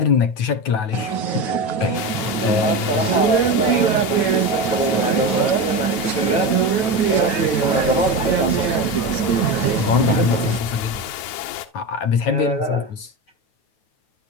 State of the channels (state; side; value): late; right; 9.2 ms